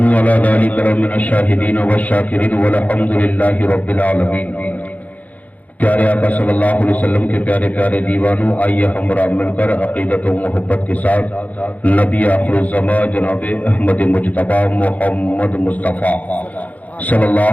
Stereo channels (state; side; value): late; right; 0.075 ms